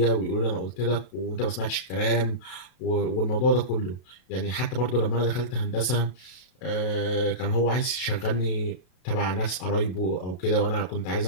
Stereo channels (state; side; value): late; right; 32 ms